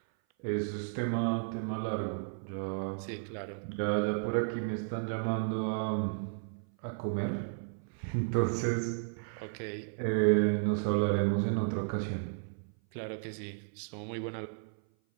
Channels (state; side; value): silent; left; 55 dB below the other